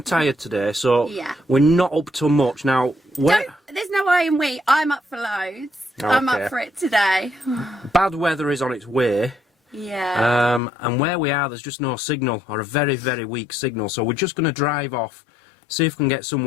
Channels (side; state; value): right; drops out; at 10.6 s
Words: tired today, so Yeah. we're not up to much. Now, There's no way in we. I'm up for loads. Okay. I'm up for it today. Bad weather is on its way. Yeah. And where we are, there's just no signal, or a very, very weak signal. So we're just going to drive off, see if we can get